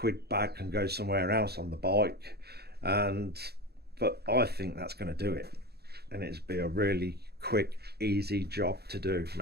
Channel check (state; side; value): late; left; 0.47 ms